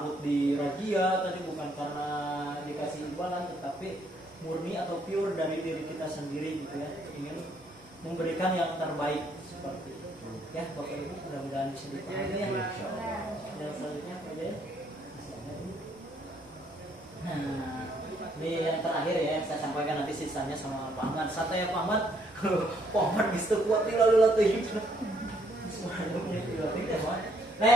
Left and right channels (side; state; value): both; normal; correlation 0.69